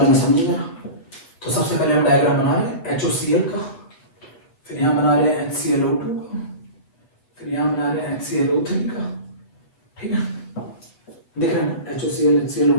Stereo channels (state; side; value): late; right; 8.0 ms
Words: में समझिएगा। तो सबसे पहले हम डायग्राम बना रहे हैं HOCl का, फिर यहाँ बना रहे हैं HClO2 का, फिर यहाँ बना रहे हैं HClO3 का। ठीक है, देख रहे हैं ना, HOCl,